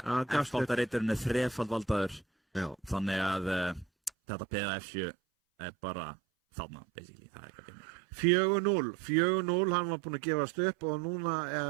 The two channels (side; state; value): left; drops out; at 4.1 s